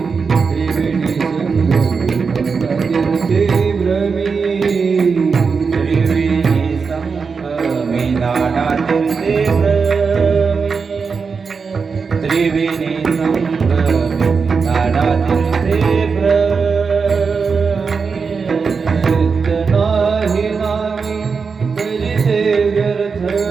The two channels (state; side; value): quieter; left; 5.3 dB